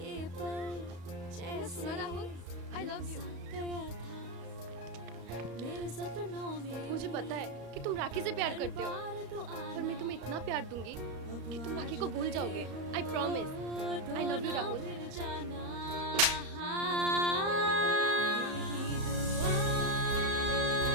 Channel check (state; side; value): late; left; 34 ms